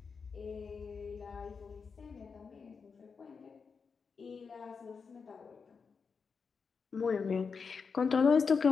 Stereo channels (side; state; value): right; quieter; 5.4 dB